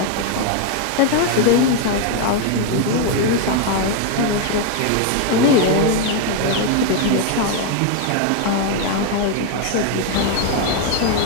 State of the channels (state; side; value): different; both; correlation 0.01